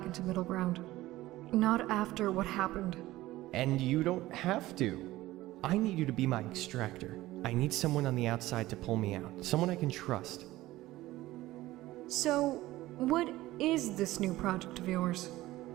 into Middleground. Not after what happened. And you don't have to. I need you to be my extractor. I need someone on the outside to pull me out. Someone I can trust. So, what is this new project of yours?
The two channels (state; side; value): quieter; left; 16.9 dB